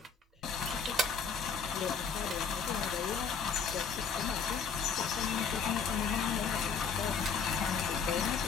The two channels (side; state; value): right; quieter; 5.7 dB